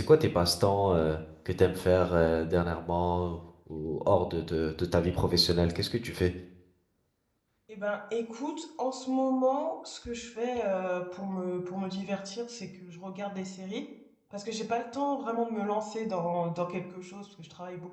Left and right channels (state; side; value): identical; both; correlation 1.00